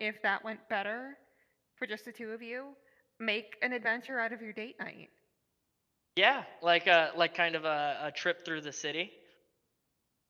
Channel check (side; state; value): both; identical; correlation 1.00